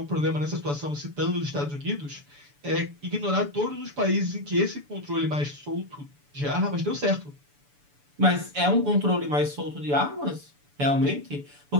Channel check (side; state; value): left; late; 6.9 ms